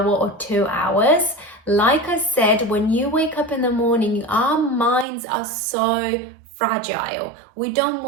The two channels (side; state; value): left; drops out; at 5.1 s